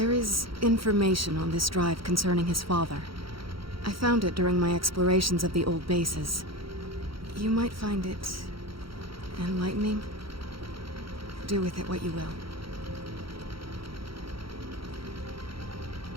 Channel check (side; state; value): left; late; 0.75 ms